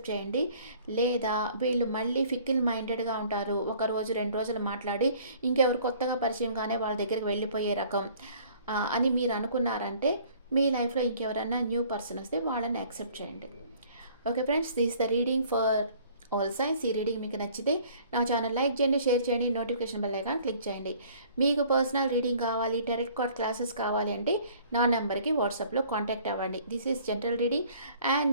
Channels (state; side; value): inverted; both; correlation -0.54